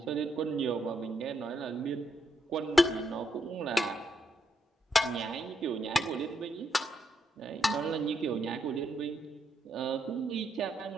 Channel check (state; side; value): normal; both; correlation 0.78